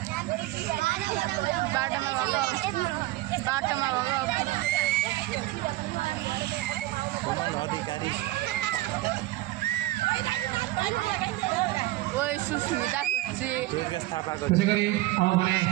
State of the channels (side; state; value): left; quieter; 18.0 dB